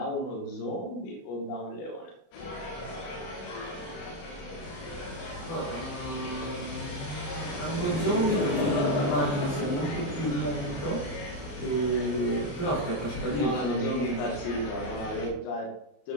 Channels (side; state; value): right; late; 31 ms